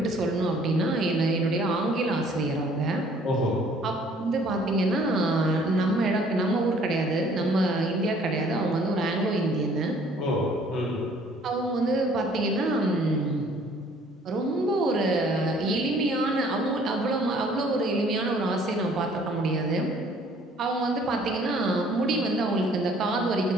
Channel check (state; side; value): normal; both; correlation 0.58